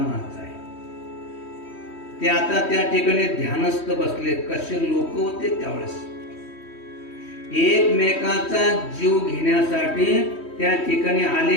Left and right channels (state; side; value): late; right; 3.1 ms